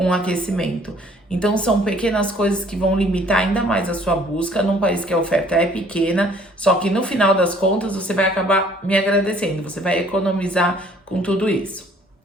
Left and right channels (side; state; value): both; normal; correlation 0.58